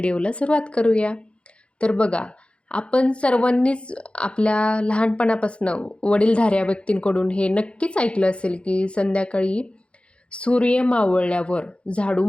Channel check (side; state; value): right; late; 0.059 ms